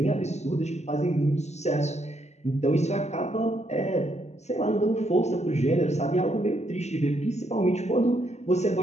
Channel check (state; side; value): late; right; 0.33 ms